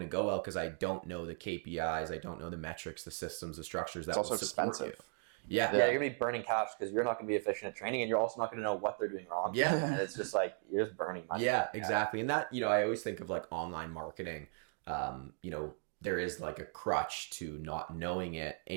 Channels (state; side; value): silent; left; 53 dB below the other